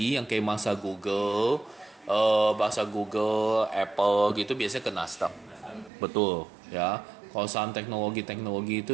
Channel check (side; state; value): left; drops out; at 5.9 s